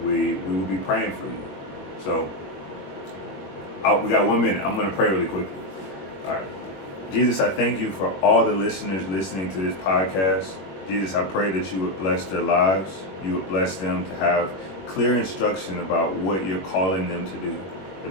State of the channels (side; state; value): right; late; 21 ms